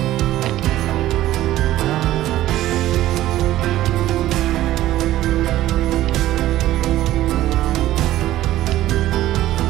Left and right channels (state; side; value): quieter; left; 14.6 dB